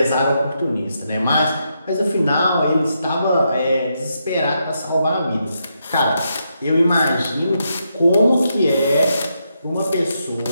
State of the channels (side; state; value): both; inverted; correlation -0.81